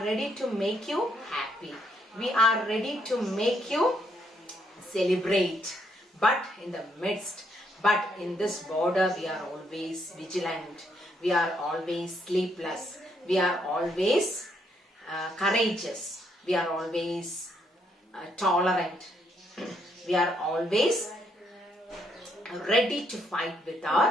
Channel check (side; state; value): both; normal; correlation 0.73